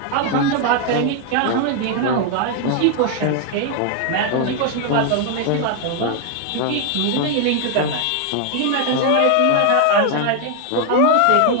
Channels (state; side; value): different; both; correlation 0.00